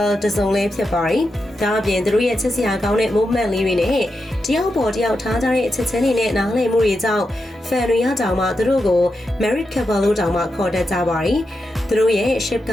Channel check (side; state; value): both; normal; correlation 0.87